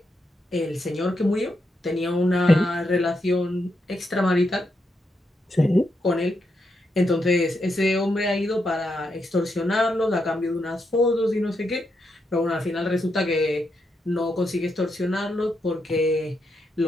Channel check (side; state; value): both; normal; correlation 0.82